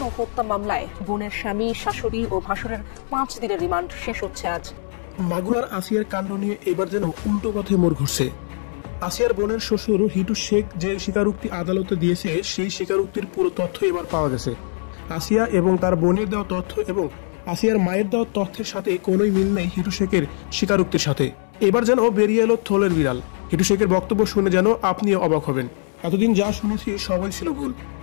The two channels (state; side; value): silent; right; 62 dB below the other